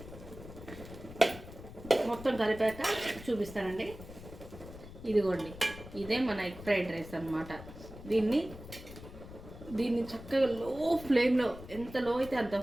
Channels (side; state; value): left; noise; rumble, 15 dB below the sound